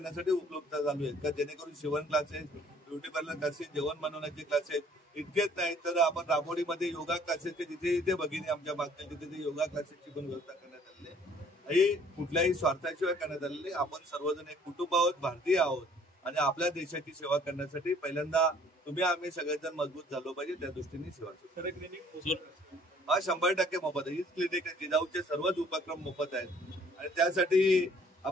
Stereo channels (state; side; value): normal; both; correlation 0.58